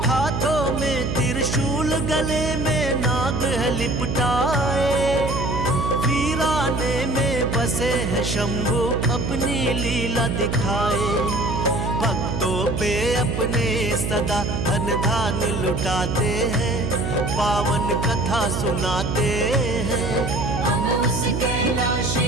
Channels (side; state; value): right; noise; hum, 2 dB below the sound